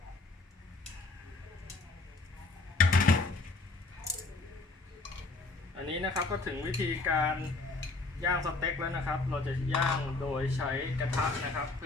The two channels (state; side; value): quieter; right; 3.4 dB